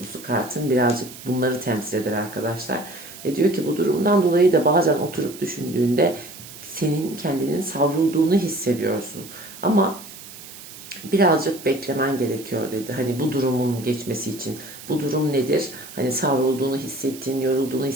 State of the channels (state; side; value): noise; right; hiss, 16 dB below the sound